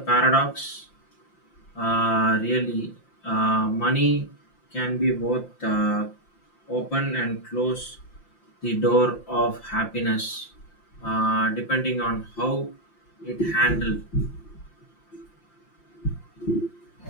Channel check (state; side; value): late; right; 5.8 ms